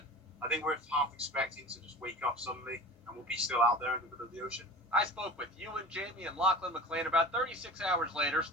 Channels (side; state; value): both; normal; correlation 0.36